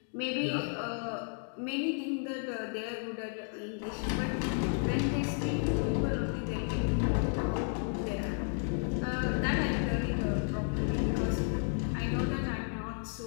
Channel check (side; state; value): right; silent; 56 dB below the other